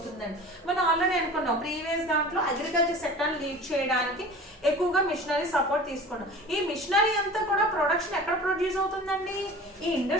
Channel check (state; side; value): normal; both; correlation 0.39